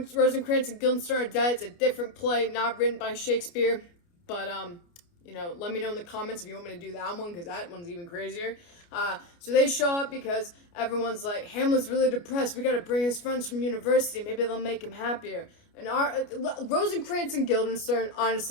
and Guildenstern are dead. It's a different play, not written by Shakespeare. But, let me know in the comments if you want me to do that one, because that one's even crazier. So they show up because everyone's like, Hamlet's really depressed. We gotta bring his friends from university. Maybe they'll make him happier. And Rosencrantz and Guildenstern,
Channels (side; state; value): right; late; 29 ms